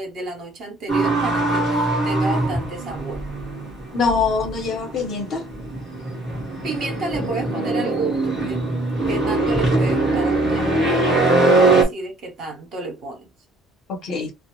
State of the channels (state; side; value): normal; both; correlation 0.58